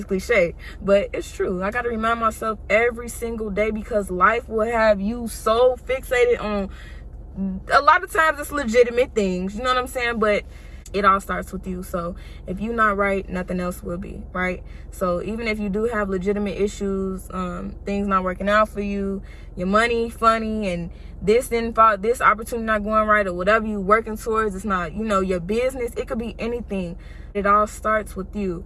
cliche, but it's true. I got to remind myself every single day, because life will have you so fixated on, a lot of times it's legitimate things, you know what I'm saying? But it all starts with you. So if you're not right, nothing else will be, right? So even if you do have legitimate issues, things not working out for you, your money funny, and this didn't fall, this opportunity not going right, or whatever you working towards, it's not, your business, it could be anything. It all starts with you.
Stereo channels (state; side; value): identical; both; correlation 1.00